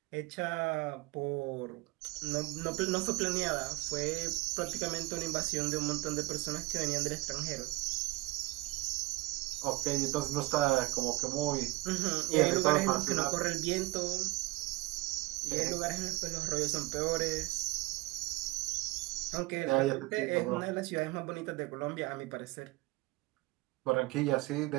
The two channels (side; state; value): left; quieter; 20.9 dB